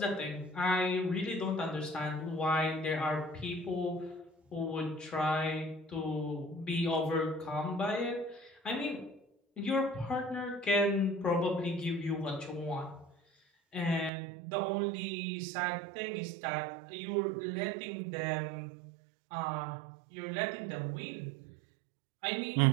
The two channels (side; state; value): left; drops out; at 14.1 s